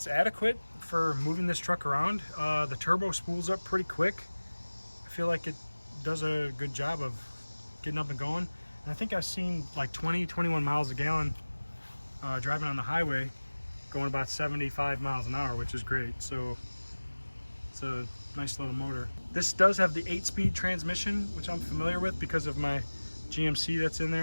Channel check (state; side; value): inverted; both; correlation -1.00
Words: adequate for moving this truck around. The turbo spools up pretty quick. I feel like it does a good job of getting up and going. And I think I've seen like 21 miles a gallon driving on the highway, going about 75 miles an hour, which is great. So it's a nice little motor. This does have the 8-speed transmission, which I'm familiar with because of my GMC that's in